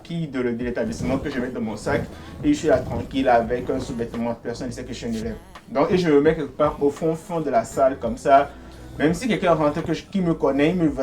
de l'établissement que je mets dans mon sac et je suis là tranquille avec un sous-vêtement. Personne ne sait que je suis un élève. Donc et je me mets quelque part au fond de la salle comme ça. Même si quelqu'un rentre qui me connaît, il ne me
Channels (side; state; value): both; identical; correlation 1.00